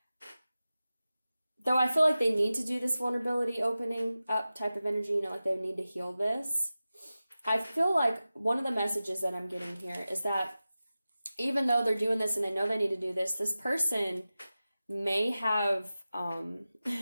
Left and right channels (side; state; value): both; inverted; correlation -0.95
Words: though I feel like they need to do this vulnerability opening up type of energy, you know, like they need to heal this. I feel like one of the messages that I'm getting here is that even though they're doing this and they know they need to do this person may have